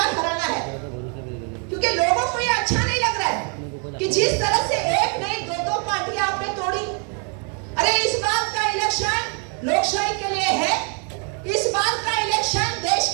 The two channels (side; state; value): left; quieter; 39.0 dB